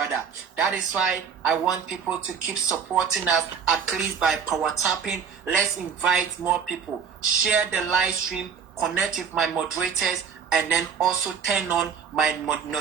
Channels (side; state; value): left; quieter; 6.8 dB